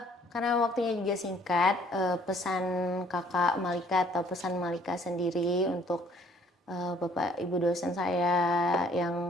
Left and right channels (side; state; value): both; normal; correlation 0.60